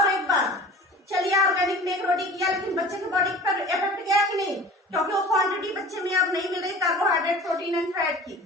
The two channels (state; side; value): normal; both; correlation 0.41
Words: एक बार चलिए ऑर्गेनिक में 1 रोटी किया, लेकिन बच्चे के बॉडी पर इफेक्ट गया कि नहीं? क्योंकि वो क्वांटिटी बच्चे में अब नहीं मिल रही कार्बोहाइड्रेट, प्रोटीन एंड फैट